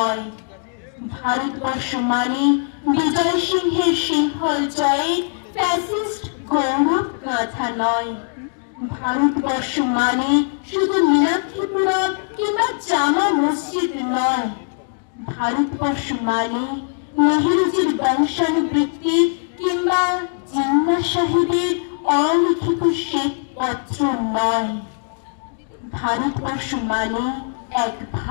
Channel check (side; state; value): right; silent; 60 dB below the other